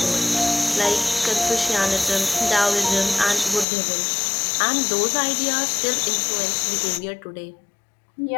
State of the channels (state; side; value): drops out; right; at 3.7 s